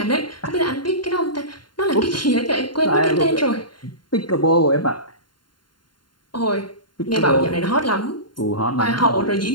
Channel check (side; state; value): right; late; 0.71 ms